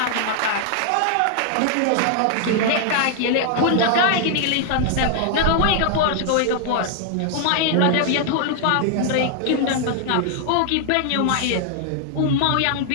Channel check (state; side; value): different; both; correlation 0.00